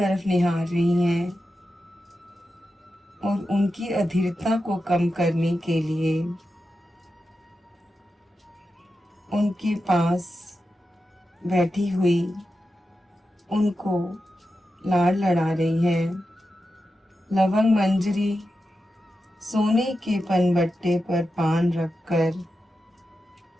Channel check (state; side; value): normal; both; correlation 0.90